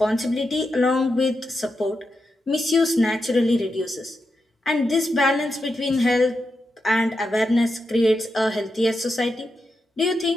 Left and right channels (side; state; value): both; normal; correlation 0.87